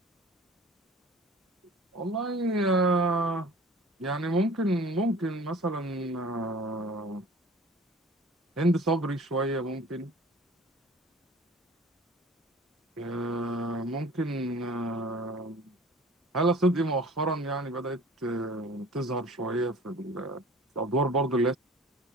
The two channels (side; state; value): both; normal; correlation 0.45